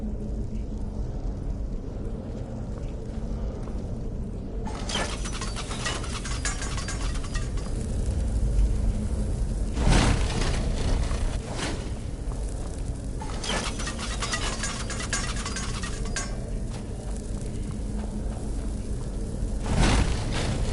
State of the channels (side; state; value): both; identical; correlation 1.00